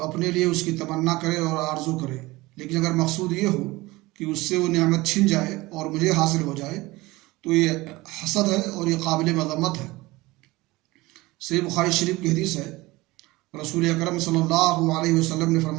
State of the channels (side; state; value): left; quieter; 20.6 dB